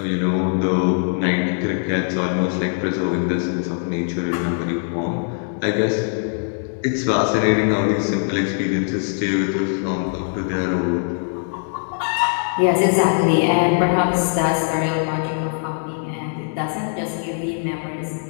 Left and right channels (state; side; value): silent; right; 65 dB below the other